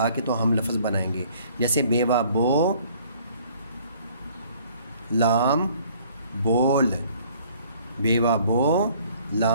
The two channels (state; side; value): inverted; both; correlation -0.57